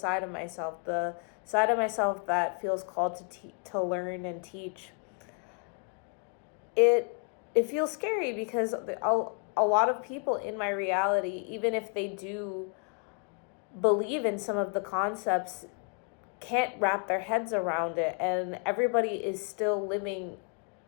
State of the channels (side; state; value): right; quieter; 38.1 dB